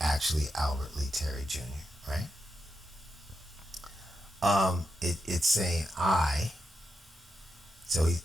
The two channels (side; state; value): both; normal; correlation 0.85